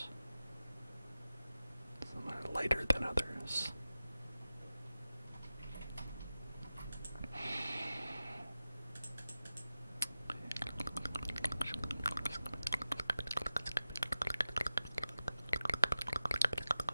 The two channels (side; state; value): both; inverted; correlation -0.94